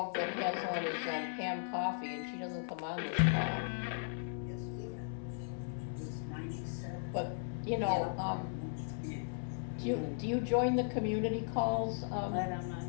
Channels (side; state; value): right; silent; 53 dB below the other